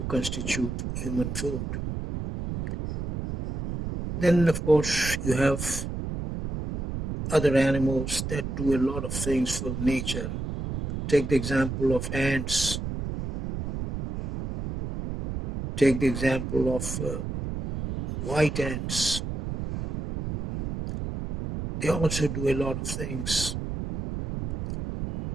constitute human food. Then, of course, you have other animals that do a lot of things for nature. Take the example of ants. Take the example of white ants. they also do a lot of things.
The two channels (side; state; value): right; noise; rumble, 5 dB below the sound